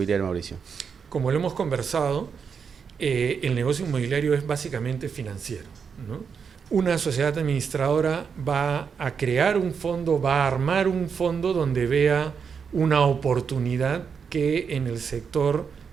Mauricio? Como lo hemos conversado, el negocio inmobiliario es básicamente financiero, ¿no? Una sociedad administradora va a crear un fondo, va a armar un fondo donde vea una oportunidad que en el sector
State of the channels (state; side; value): quieter; left; 6.3 dB